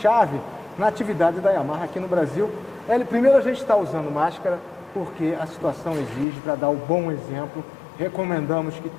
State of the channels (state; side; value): drops out; right; at 6.2 s